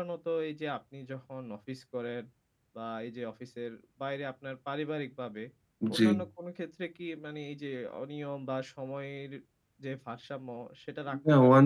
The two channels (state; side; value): identical; both; correlation 1.00